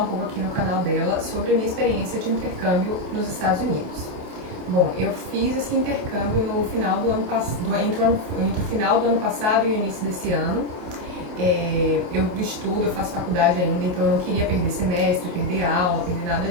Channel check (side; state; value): left; late; 28 ms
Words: um pouco aqui no canal dela sobre a minha experiência de intercâmbio nos Estados Unidos. Bom, eu fiz esse intercâmbio no final do ano passado, entre o final do ano passado e o início desse ano. Eu estudo, eu faço faculdade ainda, então eu não queria perder semestre, perder aula, perder nada